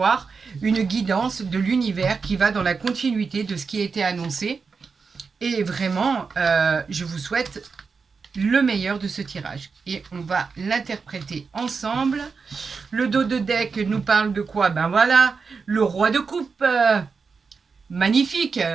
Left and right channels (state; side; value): quieter; left; 5.1 dB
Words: une guidance de l'univers qui va dans la continuité de ce qui a été annoncé. Et vraiment, je vous souhaite le meilleur de ce tirage. Et on va l'interpréter ensemble. Le dos de deck nous parle de quoi? Ben voilà, le roi de coupe. Magnifique.